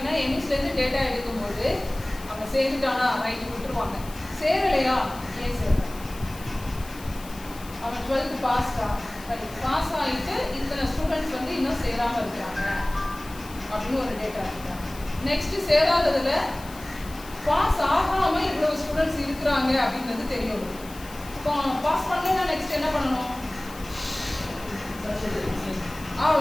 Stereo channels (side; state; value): left; noise; hiss, 18 dB below the sound